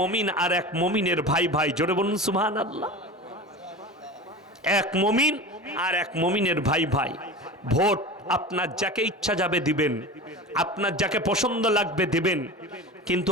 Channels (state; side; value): normal; both; correlation 0.31